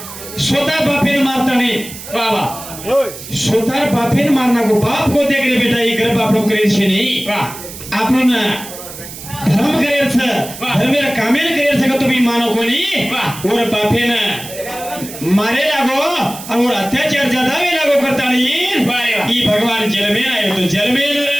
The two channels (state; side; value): noise; right; hiss, 13 dB below the sound